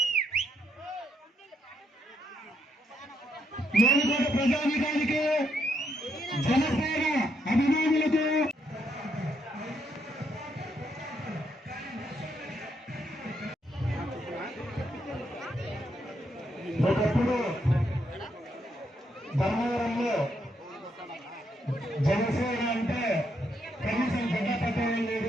జనసేన అభిమానులకు ఒకప్పుడు ధర్మవరంలో జనసేన అంటే కనీసం జెండా పట్టడం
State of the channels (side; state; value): both; normal; correlation 0.77